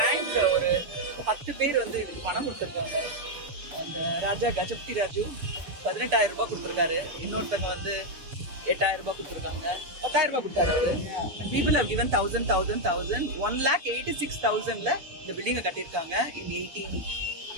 ஒரு 10 பேர் வந்து இதுக்கு பணம் கொடுத்துருக்காங்க. அந்த ராஜா கஜபதி ராஜு 18,000 ரூபாய் கொடுத்துருக்காரு. இன்னொருத்தங்க வந்து 8,000 ரூபாய் கொடுத்துருக்காங்க. 10,000 ரூபாய் கொடுத்தாரு அவரு. People have given 1,000, 1,86,000ல இந்த பில்டிங்கை கட்டியிருக்காங்க. in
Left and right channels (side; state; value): left; late; 6.9 ms